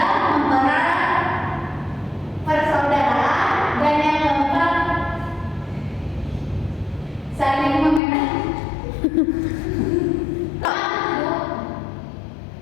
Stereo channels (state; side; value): drops out; right; at 8.0 s